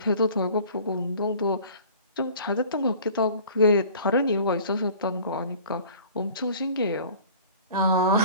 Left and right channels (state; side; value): inverted; both; correlation -0.47